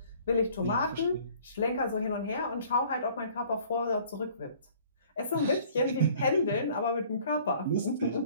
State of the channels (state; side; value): inverted; both; correlation -0.54